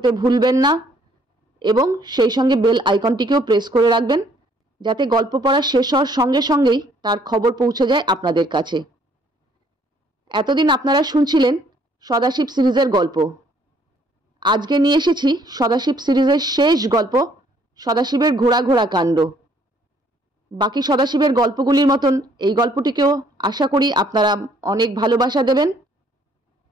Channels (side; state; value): both; normal; correlation 0.63